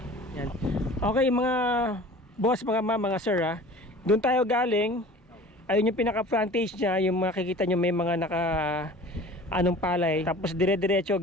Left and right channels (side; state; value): both; normal; correlation 0.43